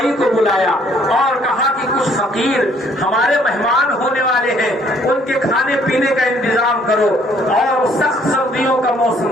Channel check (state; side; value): normal; both; correlation 0.63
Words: کو بلایا اور کہا کہ کچھ فقیر ہمارے مہمان ہونے والے ہیں, ان کے کھانے پینے کا انتظام کرو. اور سخت سردیوں کا